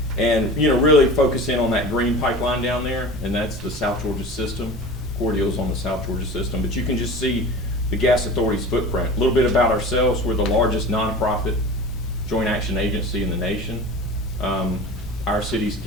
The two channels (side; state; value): both; normal; correlation 0.35